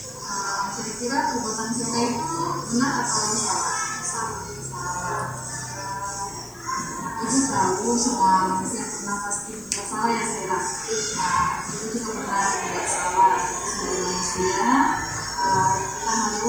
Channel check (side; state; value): left; noise; hiss, 23 dB below the sound